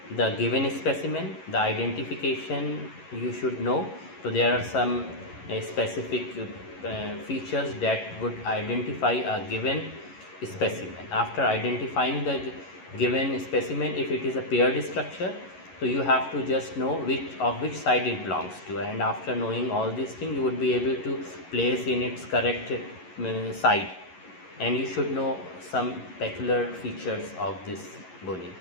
the given specimen. The identification you should know. So there are some specific features that would identify a given specimen. After identifying the given specimen, if it is a paired structure, so you have to just know which side it belongs to, and after knowing all these things, you would be able to place in its correct side, and you should know some peculiar features of this bony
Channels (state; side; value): late; right; 11 ms